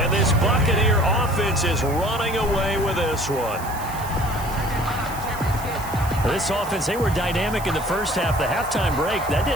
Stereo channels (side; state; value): right; noise; hiss, 14 dB below the sound